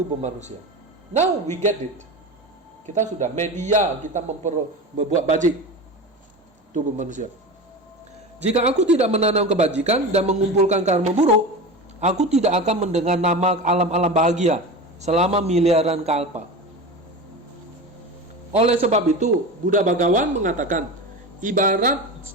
manusia. Now we get it. Kita sudah media, kita membuat bajik tubuh manusia. Jika aku tidak menanam kebajikan dan mengumpulkan karma buruk, aku tidak akan mendengar nama alam-alam bahagia selama miliaran kalpa. Oleh sebab itu, Buddha Bhagawan mengatakan, ibarat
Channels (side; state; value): both; normal; correlation 0.27